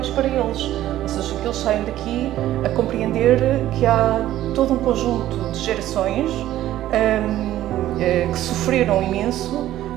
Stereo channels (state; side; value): quieter; left; 13.6 dB